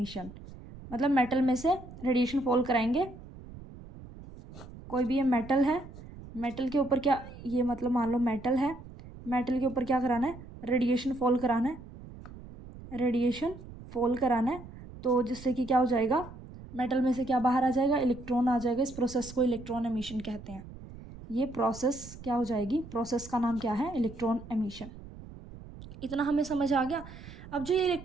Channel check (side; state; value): right; noise; rumble, 16 dB below the sound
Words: मतलब मेटल में से रेडिएशन फॉल कराएंगे, कोई भी ये मेटल है, मेटल के ऊपर क्या, ये मतलब मान लो मेटल है, मेटल के ऊपर क्या कराना है, रेडिएशन फॉल कराना है, रेडिएशन फॉल कराना है, तो जिससे कि क्या हो जाएगा, मेटल में से क्या बाहर आ जाएगा, इलेक्ट्रॉन आ जाएगा। इस प्रोसेस को इलेक्ट्रॉन एमिशन कहते हैं। ये प्रोसेस क्या हो जाएगी, प्रोसेस का नाम क्या है, इलेक्ट्रॉन एमिशन। इतना हमें समझ आ गया। अब जो ये